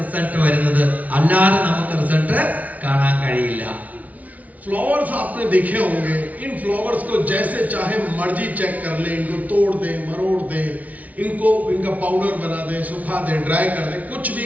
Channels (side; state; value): left; late; 0.071 ms